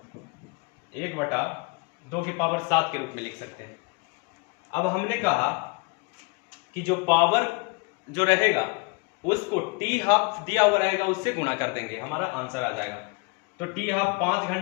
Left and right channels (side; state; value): right; quieter; 29.4 dB